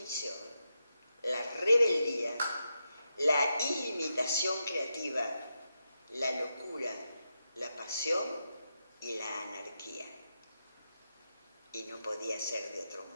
la rebeldía, la ilimitación creativa, la locura, la pasión y la anarquía. Y no podía ser de otro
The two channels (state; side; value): inverted; both; correlation -0.87